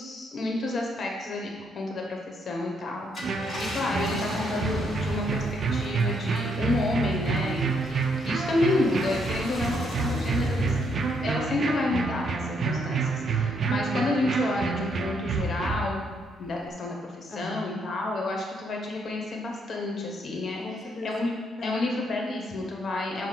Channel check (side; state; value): both; normal; correlation 0.73